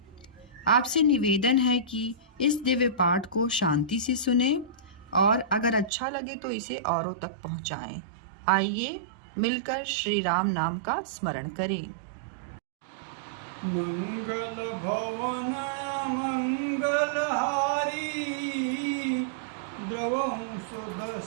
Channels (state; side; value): drops out; left; at 5.9 s